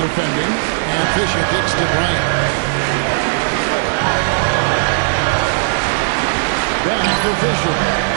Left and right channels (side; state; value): left; silent; 69 dB below the other